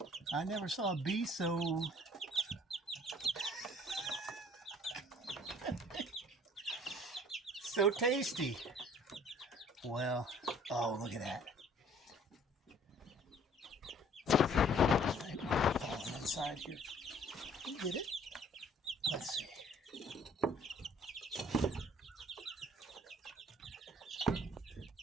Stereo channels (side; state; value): both; normal; correlation 0.55